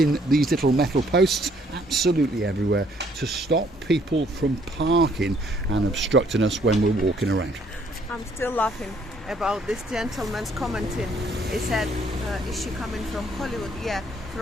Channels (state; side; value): normal; both; correlation 0.65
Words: these little metal posts absolutely everywhere to stop people from parking and obstructing us when we're walking around. I'm still laughing about this gentleman's commenting. He said, is she coming from Hollywood? Yeah,